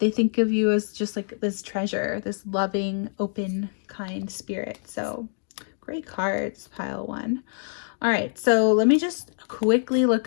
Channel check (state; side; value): silent; right; digital silence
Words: think of you as just like this treasure, this loving, open, kind spirit. So great cards, pile one. All right, so let me just quickly look